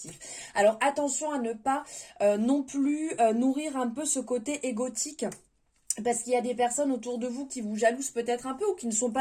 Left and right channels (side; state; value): both; identical; correlation 1.00